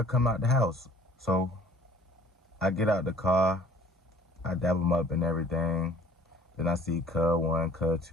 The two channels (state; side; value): normal; both; correlation 0.53